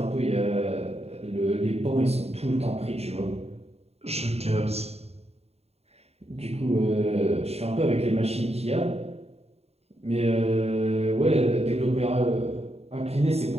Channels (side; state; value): left; late; 0.30 ms